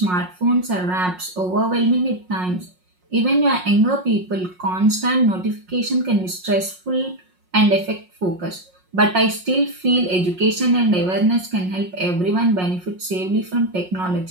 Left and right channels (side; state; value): left; late; 5.5 ms